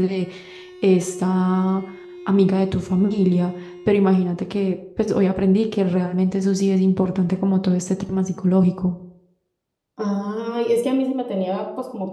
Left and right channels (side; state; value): both; identical; correlation 1.00